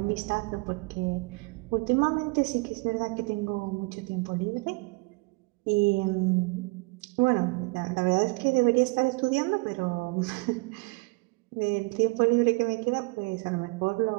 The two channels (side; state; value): left; quieter; 28.2 dB